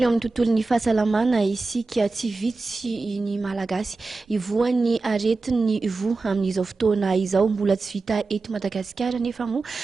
eo amin'ny tontolon'ny fahasalamana isika tsy vitsy ny malagasy ivoan'ny aretin'ny vo amin'izao fotoana izao mbola tsy vita eto Madagasikara nefa moa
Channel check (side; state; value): left; quieter; 3.7 dB